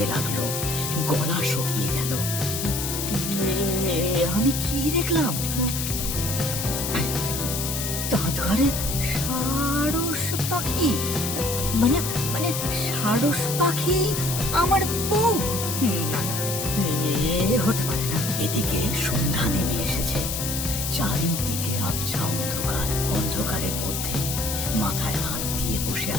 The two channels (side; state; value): left; noise; hiss, 3 dB below the sound